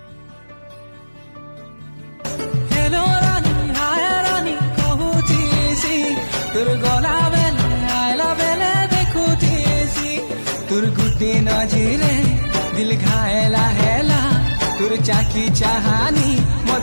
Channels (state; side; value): inverted; both; correlation -1.00